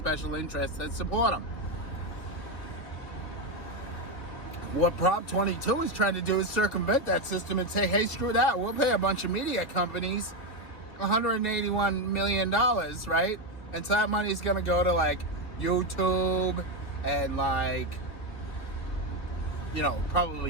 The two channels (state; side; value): late; right; 3.4 ms